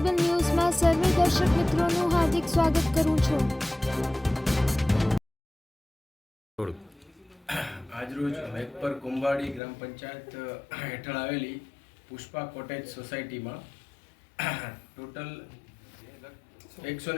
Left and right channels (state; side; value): drops out; right; at 9.6 s